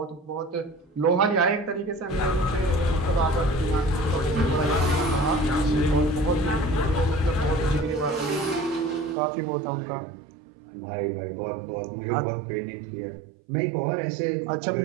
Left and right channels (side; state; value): left; drops out; at 9.2 s